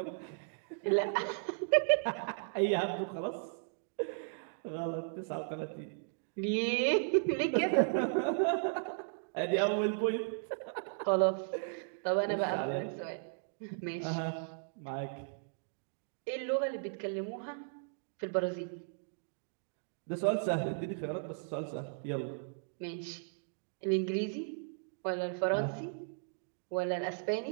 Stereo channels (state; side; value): silent; left; digital silence